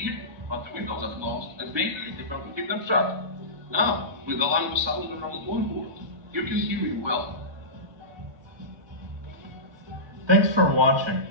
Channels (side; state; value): left; late; 1.2 ms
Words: but the windows are closed and maybe you prefer to keep them shut. Now, with the line of sound around on board, you can hear me well. Thanks for watching.